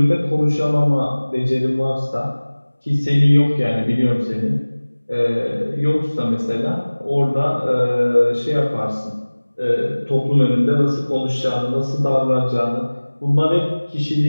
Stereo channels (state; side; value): inverted; both; correlation -1.00